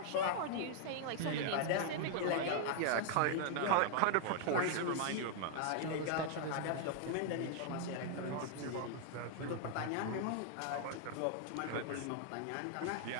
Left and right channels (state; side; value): different; both; correlation 0.00